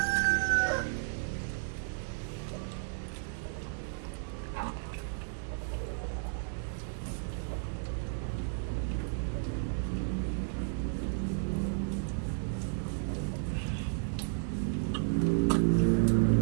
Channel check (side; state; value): left; silent; digital silence